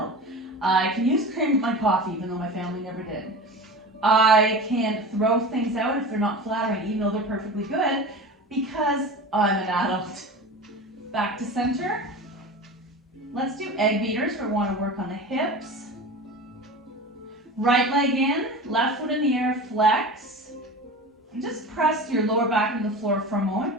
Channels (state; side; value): normal; both; correlation 0.32